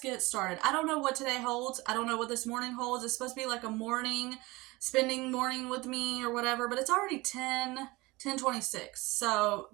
started. I don't know what today holds. I don't know what this morning holds. It's supposed to be like a spending morning with me or whatever, but it's already 10:26. So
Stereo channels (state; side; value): quieter; left; 22.1 dB